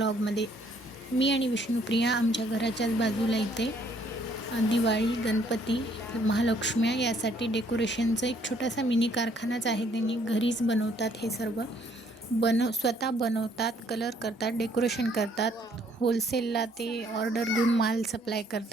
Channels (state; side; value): normal; both; correlation 0.65